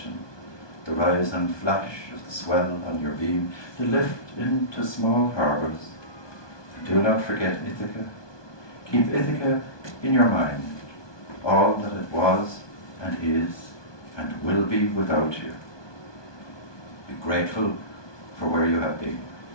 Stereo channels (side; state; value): right; late; 1.2 ms